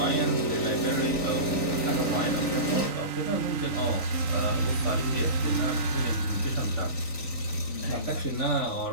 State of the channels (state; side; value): late; right; 3.9 ms